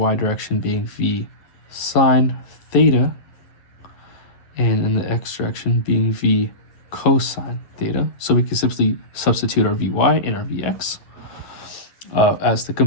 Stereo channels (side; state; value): right; late; 10 ms